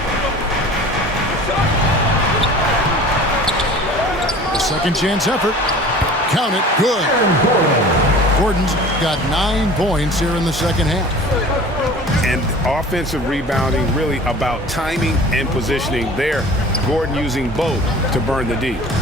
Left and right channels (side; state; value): both; normal; correlation 0.43